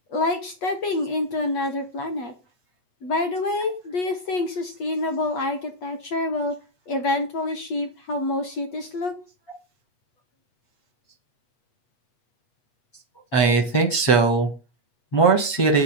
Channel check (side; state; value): right; late; 8.3 ms